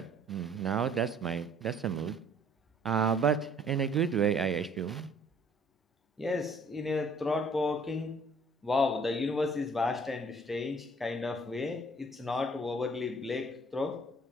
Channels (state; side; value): normal; both; correlation 0.57